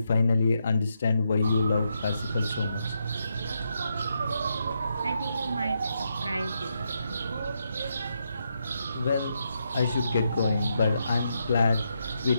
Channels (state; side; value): inverted; both; correlation -0.82